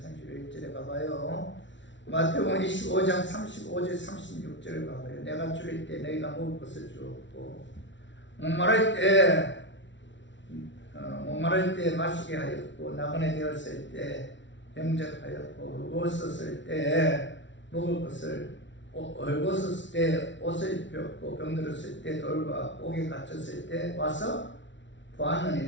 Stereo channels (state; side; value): late; right; 0.54 ms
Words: 가봐요. 마태복음 25장 35절 36절을 가봐요. 내가 줄일 때 너희가 먹을 것을 주었고, 목마를 때 마시게 하였고, 나그네 되었을 때 영접하였고, 헐벗었을 때 먹을 것을, 헐벗었을 때 옷을 입혔고, 병들었을 때 돌과 옥에 갇혔을 때 와서